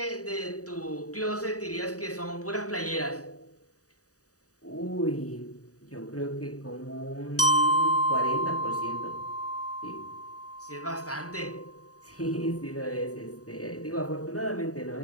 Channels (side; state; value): right; late; 0.66 ms